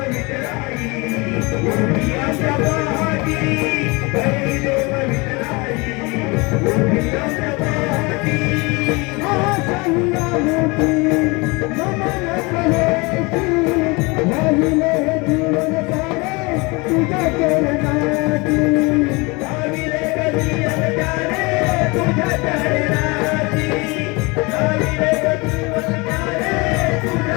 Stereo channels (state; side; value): quieter; right; 26.4 dB